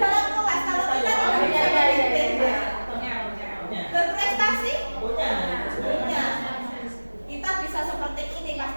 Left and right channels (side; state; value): both; inverted; correlation -1.00